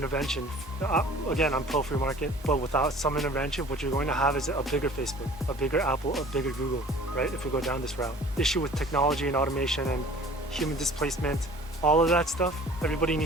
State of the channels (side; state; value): both; normal; correlation 0.47